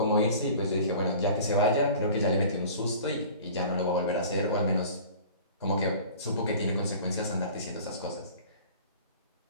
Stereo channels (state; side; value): inverted; both; correlation -0.44